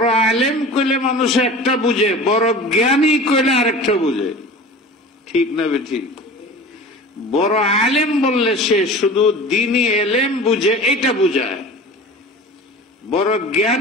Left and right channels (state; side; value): normal; both; correlation 0.37